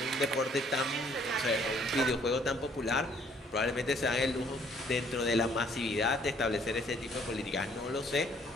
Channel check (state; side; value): normal; both; correlation 0.62